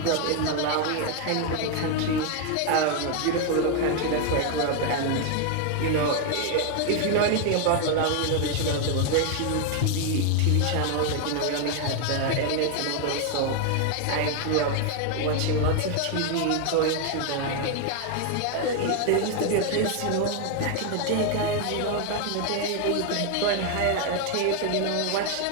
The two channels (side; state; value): both; different; correlation 0.01